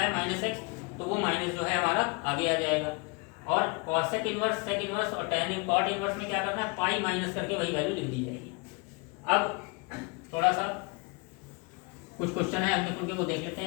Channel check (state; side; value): quieter; right; 28.9 dB